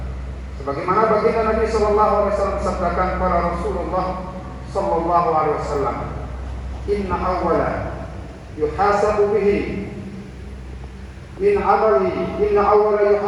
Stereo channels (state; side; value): identical; both; correlation 1.00